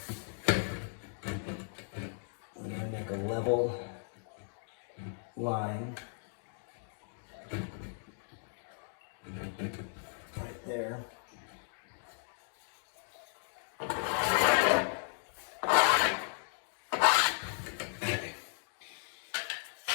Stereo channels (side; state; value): right; silent; digital silence